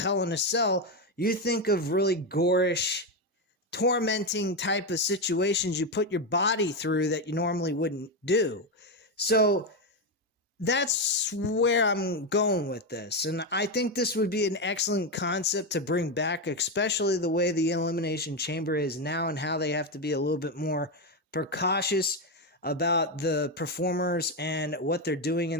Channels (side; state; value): both; normal; correlation 0.09